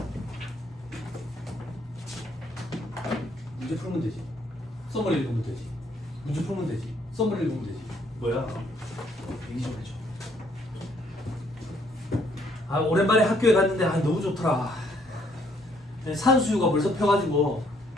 문제 풀면 되지. 썸머리 읽으면 되지. 문제 풀면 되지. 썸머리 읽으면 되지. 뭐야? 얘기 좀 해줘. 아, 오랜만에 학교에 갔는데 너무 좋더라. 산수유가 벌써 펴가지고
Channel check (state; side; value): normal; both; correlation 0.67